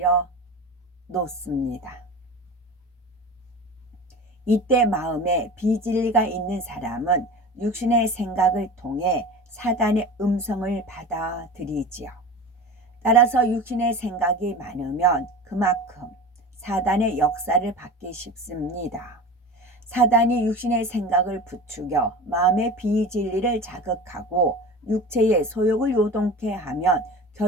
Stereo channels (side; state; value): both; normal; correlation 0.33